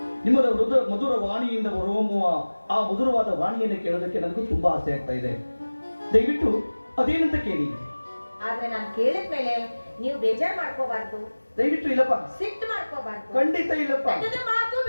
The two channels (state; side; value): inverted; both; correlation -1.00